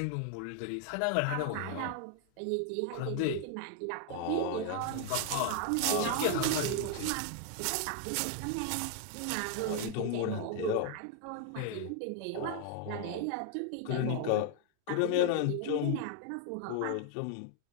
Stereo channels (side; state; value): both; different; correlation 0.00